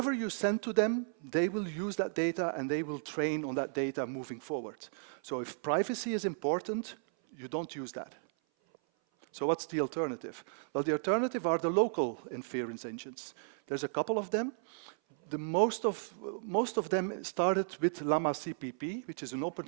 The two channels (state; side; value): silent; left; 55 dB below the other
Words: you send to them, they will use that data and they will train on that data moving forward. So if privacy is important, you don't use that. So what's the alternative? Well, the alternative are the local inference engines. There's a couple of them. Most of them started with Llama CPP, which is an open